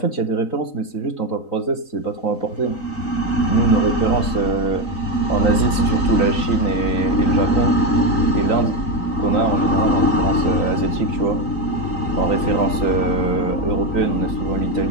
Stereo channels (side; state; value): right; late; 3.9 ms